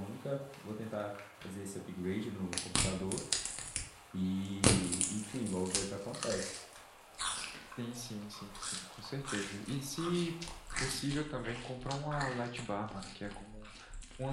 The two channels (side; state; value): both; identical; correlation 1.00